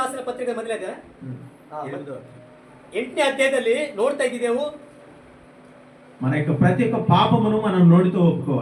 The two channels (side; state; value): both; identical; correlation 1.00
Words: ರಾಸಿನ ಪತ್ರಿಕೆ ಮೊದಲ 8ನೇ ಅಧ್ಯಾಯದಲ್ಲಿ ನೋಡ್ತಾ ಇದ್ದೇವೆ. మన యొక్క ప్రతి ఒక్క పాపమును మనం నోటితో